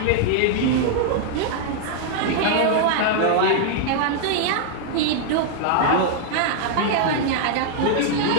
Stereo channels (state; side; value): different; both; correlation -0.01